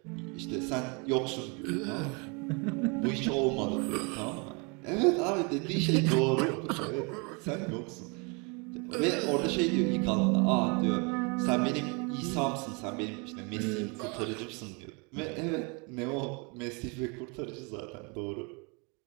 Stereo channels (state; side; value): quieter; left; 32.0 dB